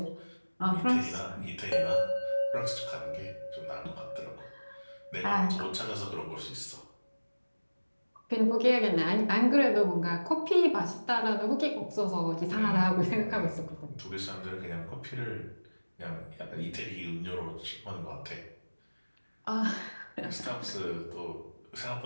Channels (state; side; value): inverted; both; correlation -1.00